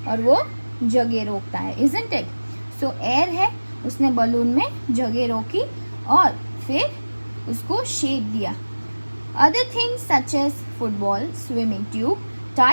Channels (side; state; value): both; inverted; correlation -1.00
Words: और वो जगह रोकता है. Isn't it? So एयर है, उसने बलून में जगह रोकी और फिर उसको शेप दिया. Other things such as football, swimming tube,